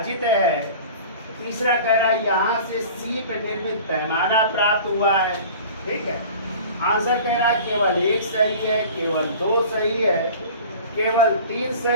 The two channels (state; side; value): inverted; both; correlation -0.41